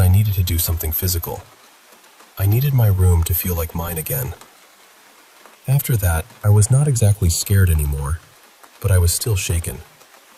needed to do something physical. I needed my room to feel like mine again. After that, I was not exactly scared anymore, but I was still shaken.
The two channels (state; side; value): identical; both; correlation 1.00